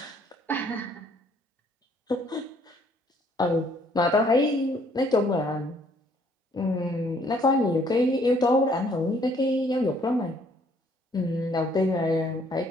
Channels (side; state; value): both; normal; correlation 0.63